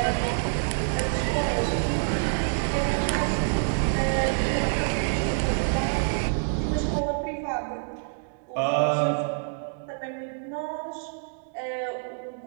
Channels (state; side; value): silent; left; digital silence